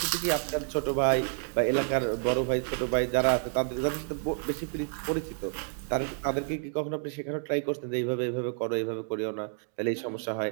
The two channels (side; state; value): left; silent; digital silence